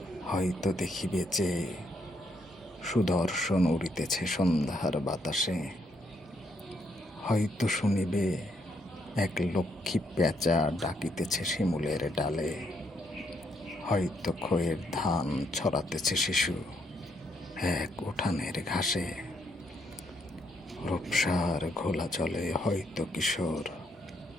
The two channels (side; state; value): both; normal; correlation 0.74